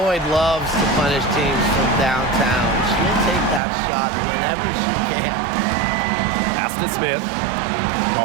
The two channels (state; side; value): drops out; left; at 3.6 s